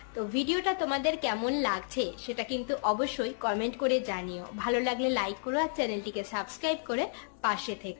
তো ভিডিওটা তোমাদের কেমন লাগছে সেটা কিন্তু অবশ্যই কমেন্ট করে জানিও। ভালো লাগলে লাইক করো আর চ্যানেলটিকে সাবস্ক্রাইব করে পাশে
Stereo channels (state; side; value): silent; right; 56 dB below the other